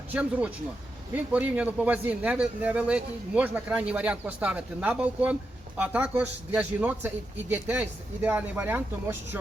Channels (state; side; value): normal; both; correlation 0.87